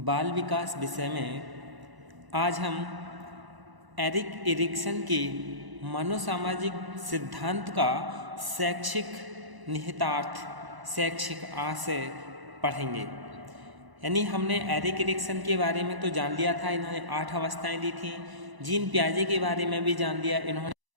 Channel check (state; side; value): late; left; 1.0 ms